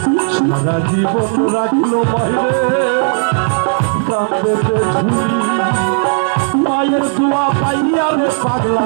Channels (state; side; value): silent; left; 65 dB below the other